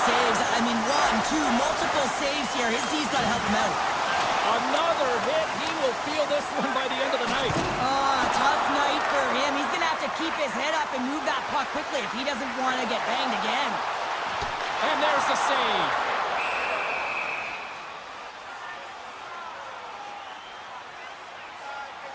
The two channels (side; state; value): both; identical; correlation 1.00